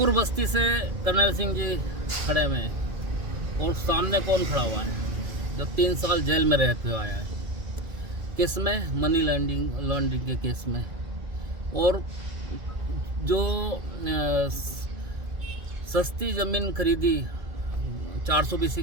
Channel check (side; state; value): left; late; 2.4 ms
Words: बस्ती से कर्नल सिंह जी खड़े हुए हैं और सामने कौन खड़ा हुआ है जो 3 साल जेल में रहते हुए आया है केस में, मनी लॉन्ड्रिंग के केस में। और जो सस्ती ज़मीन खरीदी 400